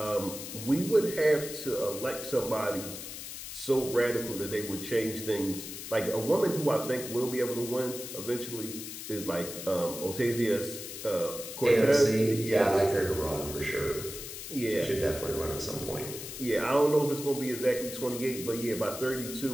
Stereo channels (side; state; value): left; noise; hiss, 9 dB below the sound